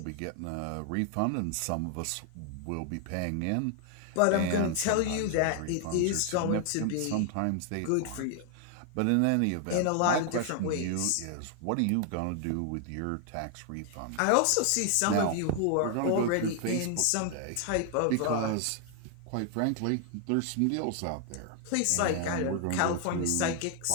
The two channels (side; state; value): both; different; correlation 0.00